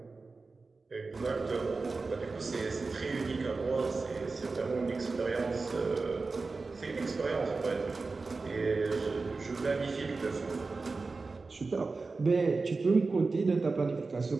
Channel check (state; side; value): quieter; left; 3.9 dB